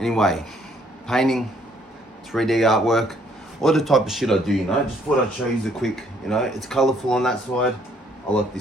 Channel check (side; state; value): both; normal; correlation 0.65